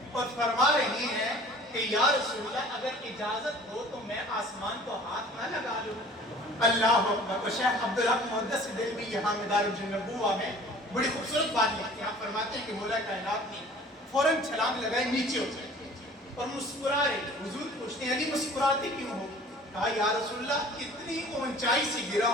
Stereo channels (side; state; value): both; normal; correlation 0.48